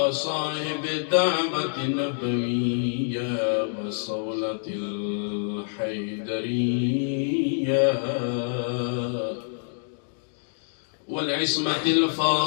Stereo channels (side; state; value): right; silent; digital silence